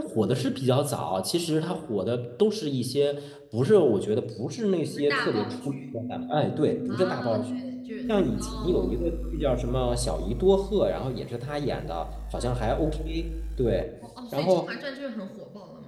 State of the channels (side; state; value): both; identical; correlation 1.00